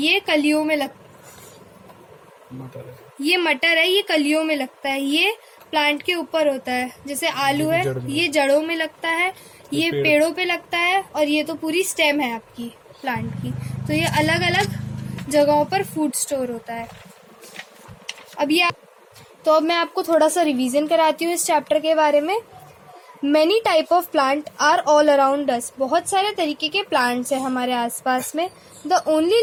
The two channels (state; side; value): identical; both; correlation 1.00